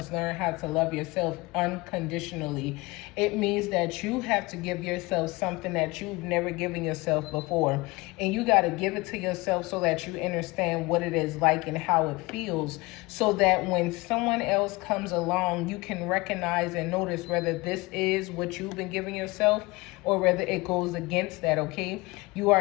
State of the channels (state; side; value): quieter; right; 23.3 dB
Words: learn how to love yourself unconditionally. It means that you have to give yourself something that you've never given yourself before. And you got to give it to yourself so that you understand what it is like and how it feels. So that when someone else comes along, you can recognize and notice whether this is what you've been giving yourself or whether it goes against that, okay? You are